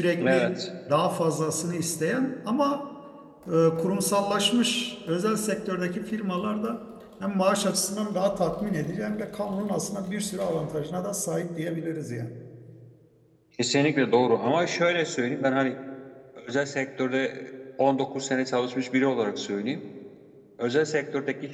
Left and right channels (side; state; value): both; identical; correlation 1.00